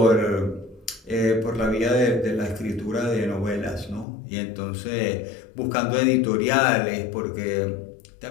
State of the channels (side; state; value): right; drops out; at 4.0 s